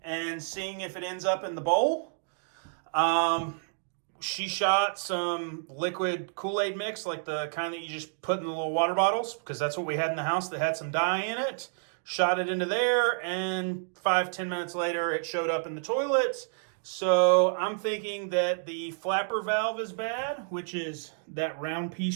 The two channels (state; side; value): silent; left; digital silence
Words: seeing if it ends up in the bowl. She shot some liquid Kool-Aid mix, like the kind that you just put in the little water bottles, because that's what we had in the house that had some dye in it. Shot it into there, and 5-10 minutes later, it showed up in the toilet. So I'm thinking that the flapper valve is bad, which is that round